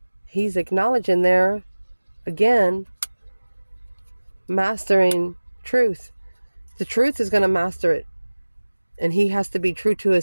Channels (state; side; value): inverted; both; correlation -1.00